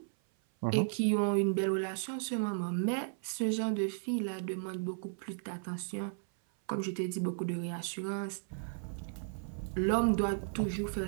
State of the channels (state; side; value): silent; left; 55 dB below the other